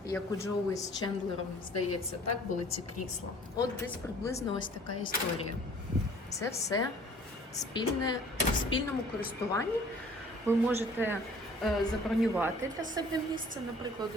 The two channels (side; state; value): both; normal; correlation 0.53